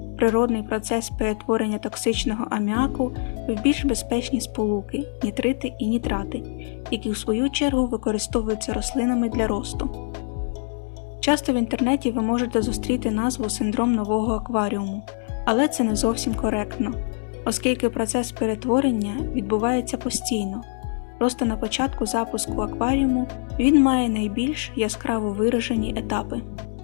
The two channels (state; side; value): silent; right; digital silence